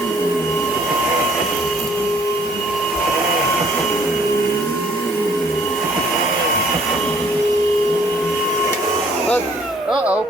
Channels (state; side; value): normal; both; correlation 0.61